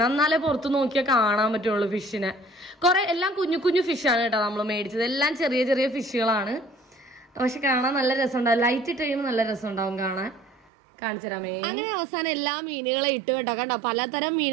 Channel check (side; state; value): left; drops out; at 10.7 s